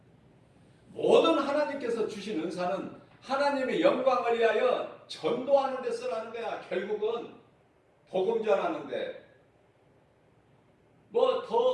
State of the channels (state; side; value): identical; both; correlation 1.00